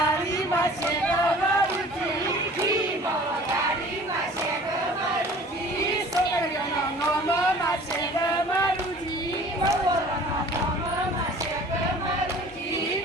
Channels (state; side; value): normal; both; correlation 0.47